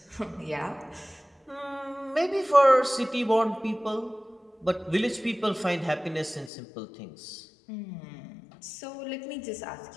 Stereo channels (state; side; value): drops out; right; at 6.5 s